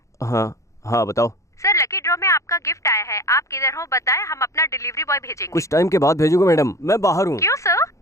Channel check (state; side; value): late; right; 0.15 ms